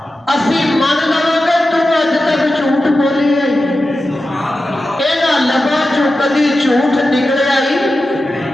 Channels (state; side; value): normal; both; correlation 0.92